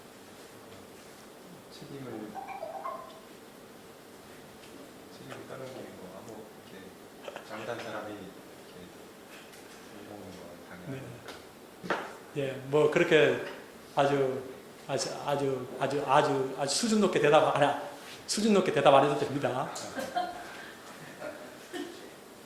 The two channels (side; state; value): both; identical; correlation 1.00